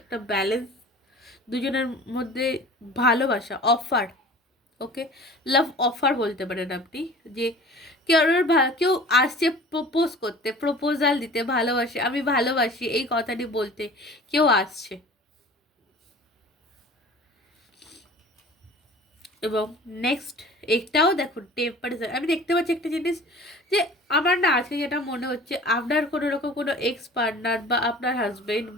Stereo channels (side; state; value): both; normal; correlation 0.43